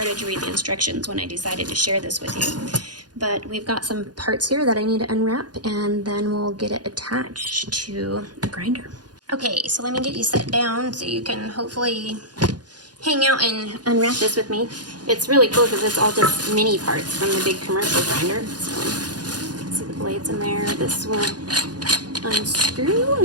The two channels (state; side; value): late; left; 0.69 ms